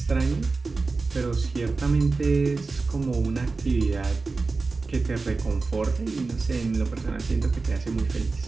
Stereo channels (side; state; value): left; quieter; 3.9 dB